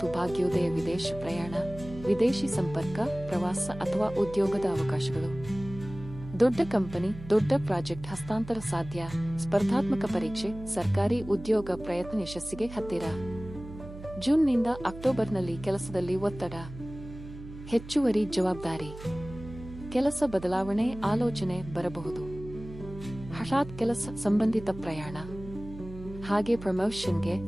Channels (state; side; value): noise; right; hum, 14 dB below the sound